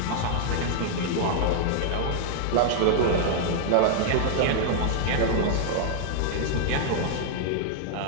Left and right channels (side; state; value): both; different; correlation 0.00